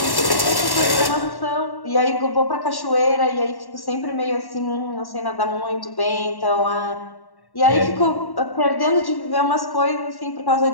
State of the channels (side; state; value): right; late; 1.1 ms